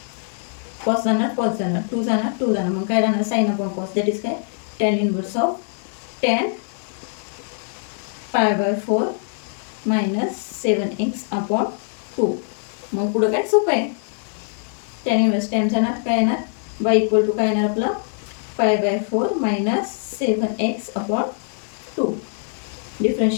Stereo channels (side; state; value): right; silent; 62 dB below the other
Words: कॉस जाणार 2 जाणार. मग काय राहणार sine upon cos, that is काय tan inverse of tan pi by 4 minus 7x/2. मग पुढं काय सोपं आहे, टॅन इनवर्स टॅन जाणार, काय येणार बाय इक्वल टू काय येणार आपलं पाय बाय 4 मायनस 7x/2.